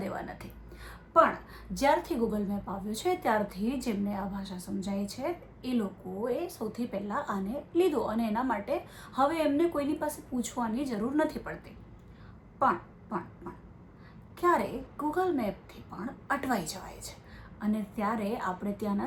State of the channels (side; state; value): both; identical; correlation 1.00